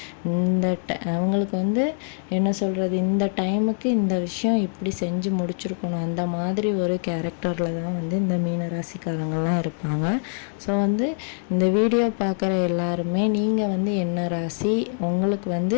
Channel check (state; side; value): silent; right; digital silence